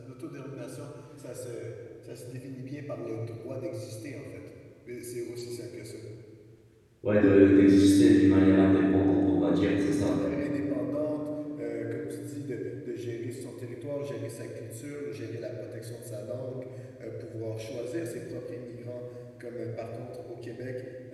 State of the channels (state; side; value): identical; both; correlation 1.00